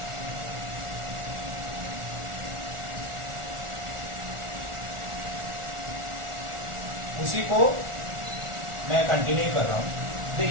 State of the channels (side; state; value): left; late; 1.4 ms